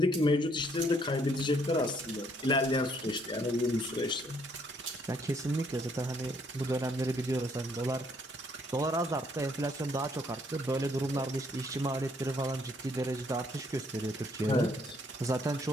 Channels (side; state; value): both; normal; correlation 0.67